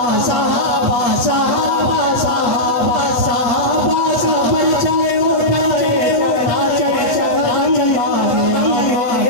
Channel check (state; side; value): late; right; 8.1 ms